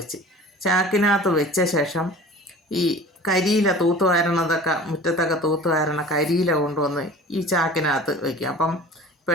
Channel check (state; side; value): normal; both; correlation 0.42